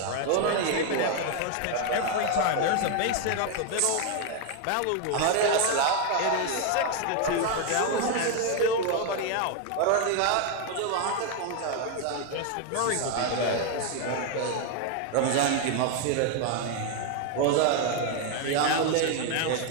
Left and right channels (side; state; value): both; different; correlation 0.01